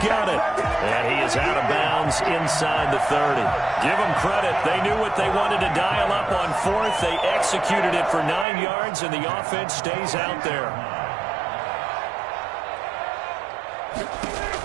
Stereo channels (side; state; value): left; drops out; at 8.5 s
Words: it. And he is out of bounds inside the 30. Give them credit. They knew what they wanted to dial up on 4th. They executed it for 9 yards, and the offense stays out there.